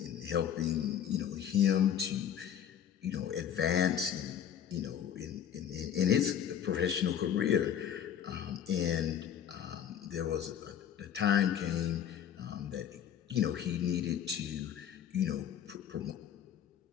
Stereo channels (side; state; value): right; quieter; 9.3 dB